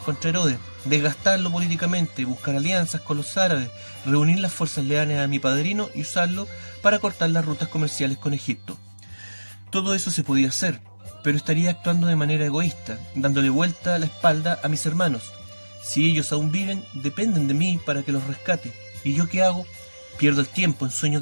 contra Herodes, desgastarlo políticamente, buscar alianzas con los árabes, reunir las fuerzas leales a mi padrino y usarlo para cortar las rutas comerciales con Egipto. Todo eso se podía hacer, pero estaría actuando de manera egoísta, dándole vuelta a la espalda a mis hermanos. Si ellos aún viven, dependen de mí para que los rescate. ¿Y yo qué hago? Pierdo el tiempo en sueños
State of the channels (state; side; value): inverted; both; correlation -1.00